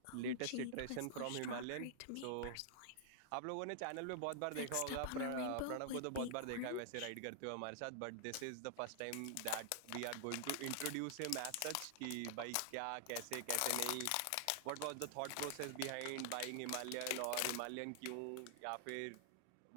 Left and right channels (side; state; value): both; different; correlation -0.01